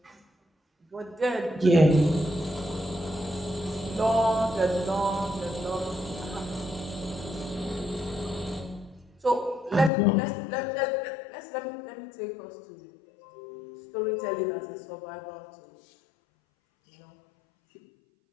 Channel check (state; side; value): drops out; right; at 9.9 s